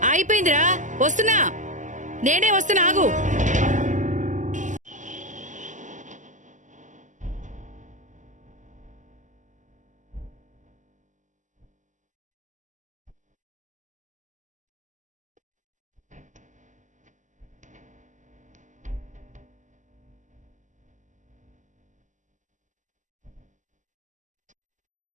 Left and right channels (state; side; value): late; left; 0.37 ms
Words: అయిపోయిందిరా, వస్తున్నా. నేనే వస్తున్నా, ఆగు.